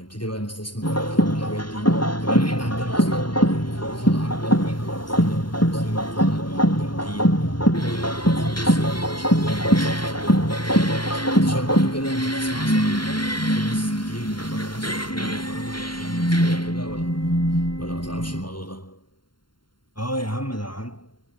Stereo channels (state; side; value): late; right; 0.72 ms